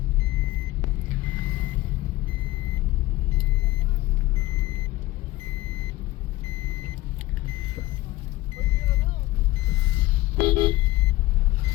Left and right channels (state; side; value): quieter; right; 17.7 dB